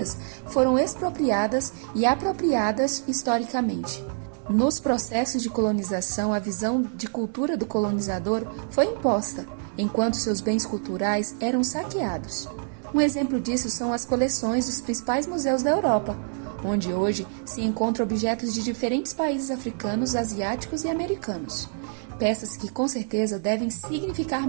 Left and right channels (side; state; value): left; silent; 61 dB below the other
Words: foram expropriadas e apropriadas historicamente. Nos processos de colonização, a visão de cultura do colonizador foi imposta, enquanto seus bens culturais eram saqueados. Um exemplo disso são as coleções dos principais museus da Europa, onde hoje se encontram objetos de diferentes países africanos, asiáticos e americanos. Peças que com certeza devem significar